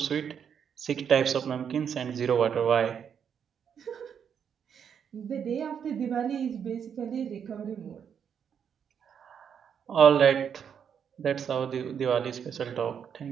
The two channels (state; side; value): quieter; left; 7.7 dB